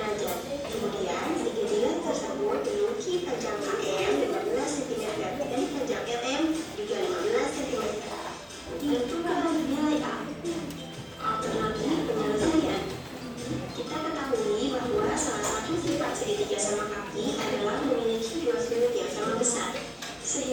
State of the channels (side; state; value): both; identical; correlation 1.00